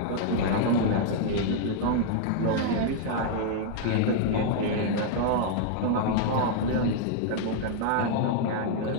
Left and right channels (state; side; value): different; both; correlation -0.01